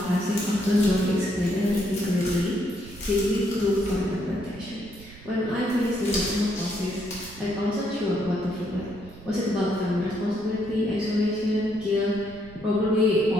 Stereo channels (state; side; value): noise; right; rumble, 19 dB below the sound